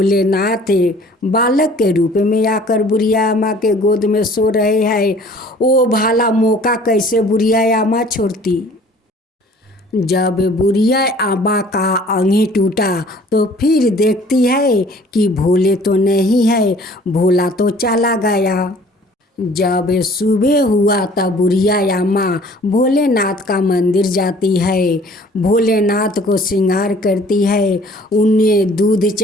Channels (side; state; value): both; normal; correlation 0.52